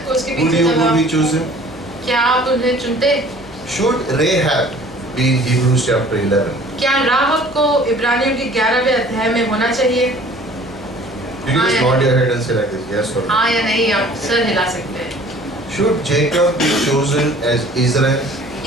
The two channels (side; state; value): left; noise; hum, 23 dB below the sound